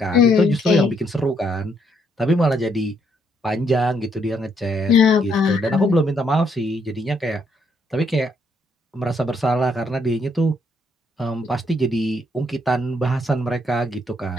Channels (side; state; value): both; normal; correlation 0.72